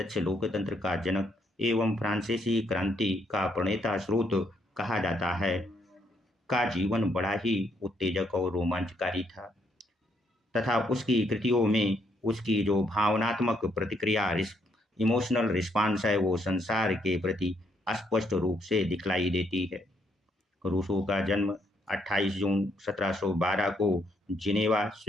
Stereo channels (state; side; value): normal; both; correlation 0.73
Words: लोकतंत्र का जनक एवं फ्रांसीसी क्रांति का प्रणेता स्रोत कहा जाता है, का जीवन बड़ा ही उत्तेजक और रोमांचकारी था तथा उसकी कृतियों में उसकी जो भावनात्मक प्रतिक्रिया इमोशनल रिस्पांस है वो संसार के प्रति स्पष्ट रूप से दिखलाई देती है। रूसो का जन्म 28 जून 1712 को जिनेवा,